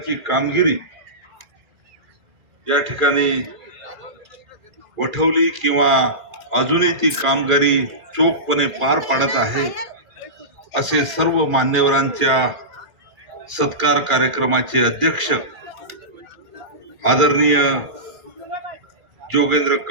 कामगिरी या ठिकाणी वठवली किंवा अजूनही ती कामगिरी चोखपणे पार पाडत आहे असे सर्व मान्यवरांच्या सत्कार कार्यक्रमाचे अध्यक्ष आदरणीय जोगेंद्र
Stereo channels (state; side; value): late; left; 1.9 ms